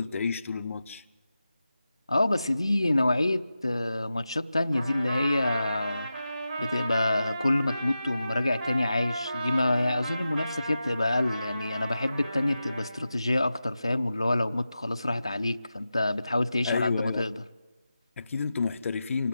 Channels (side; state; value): both; inverted; correlation -0.92